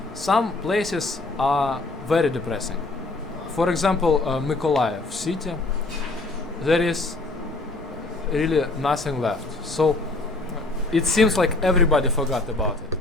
some places are very depressing. For example, Mykolaiv city, there is really nothing left. So it seems like everybody forgot about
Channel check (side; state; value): right; quieter; 3.1 dB